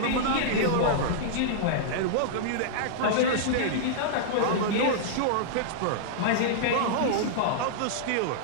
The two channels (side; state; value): both; different; correlation -0.02